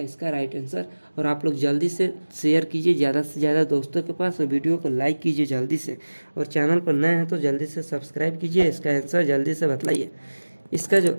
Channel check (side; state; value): both; inverted; correlation -1.00